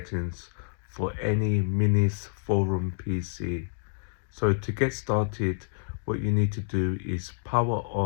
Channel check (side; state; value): right; silent; digital silence